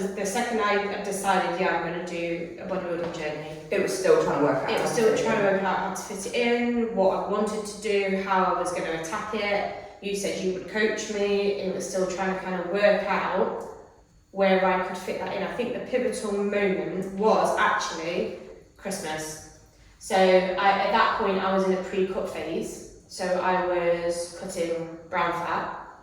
the second I decided, I'm going to do a bodybuilding journey, it was still trying to work out. It was still trying to work out how to fit it in, what I wanted to do, how I was going to attack it. You said you would coach me. It was still trying to kind of work out where I could fit that in. I think the pivotal moment was actually Christmas. So at that point I was in a pre-cut phase. So I was cutting brown fat.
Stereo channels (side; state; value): both; identical; correlation 1.00